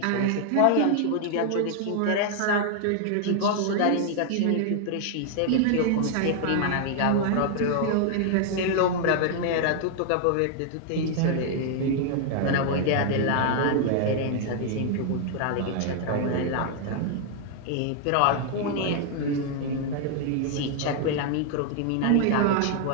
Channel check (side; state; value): both; different; correlation 0.00